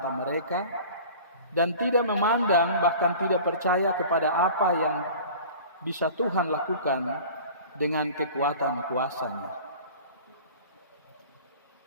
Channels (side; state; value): both; inverted; correlation -0.41